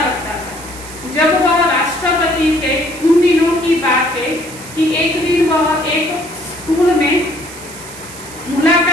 था। जब वह राष्ट्रपति थे उन दिनों की बात है कि एक दिन वह एक स्कूल में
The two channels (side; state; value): right; noise; hiss, 15 dB below the sound